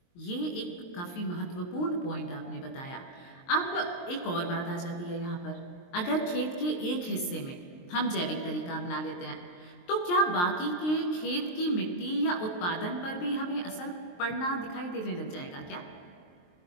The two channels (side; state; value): right; late; 23 ms